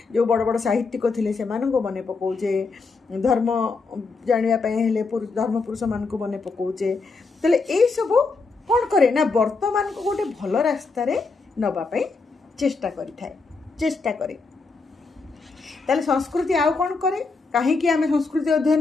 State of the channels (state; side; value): quieter; right; 4.2 dB